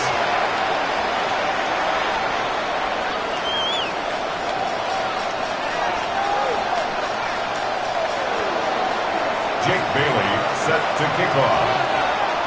Jake Bailey set to kick off.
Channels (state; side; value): identical; both; correlation 1.00